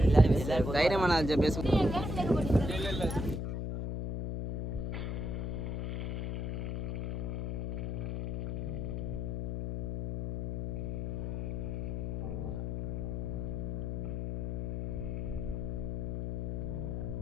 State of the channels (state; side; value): noise; left; hum, 1 dB below the sound